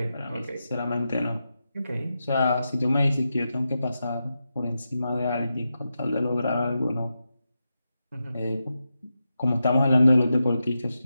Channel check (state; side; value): inverted; both; correlation -0.89